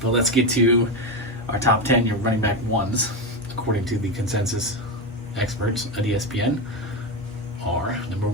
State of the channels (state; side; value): normal; both; correlation 0.14